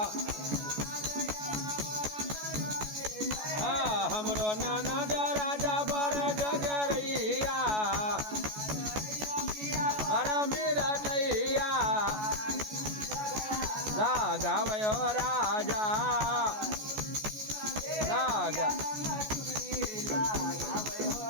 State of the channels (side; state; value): left; late; 14 ms